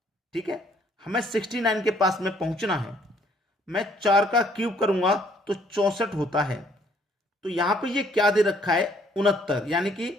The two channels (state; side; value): normal; both; correlation 0.64